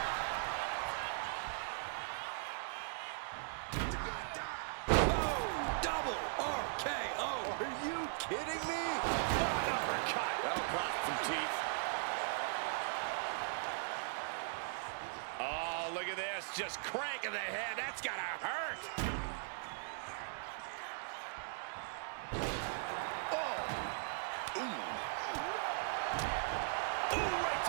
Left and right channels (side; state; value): left; silent; 52 dB below the other